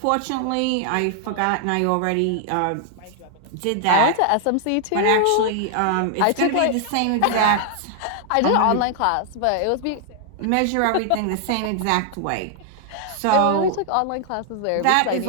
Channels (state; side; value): different; both; correlation 0.00